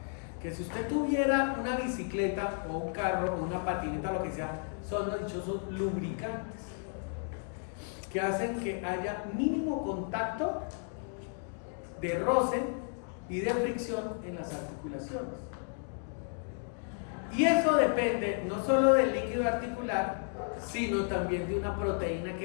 Que si usted tuviera una bicicleta o un carro o una patineta, lo que sea, son los dichosos lubricantes, que hacen que haya mínimo contacto de roce y de fricción en las articulaciones. Y eso depende no solo del líquido articular, sino también de una proteína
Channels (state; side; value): silent; right; 56 dB below the other